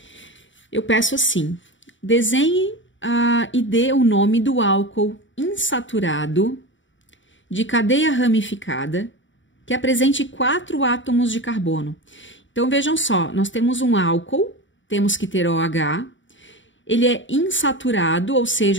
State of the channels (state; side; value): late; right; 0.55 ms